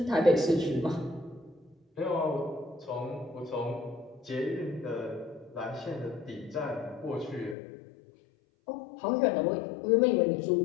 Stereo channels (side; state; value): right; drops out; at 7.6 s